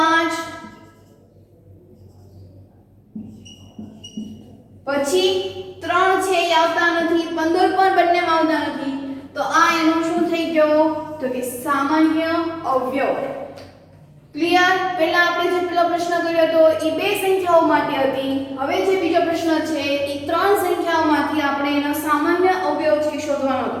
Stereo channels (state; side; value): identical; both; correlation 1.00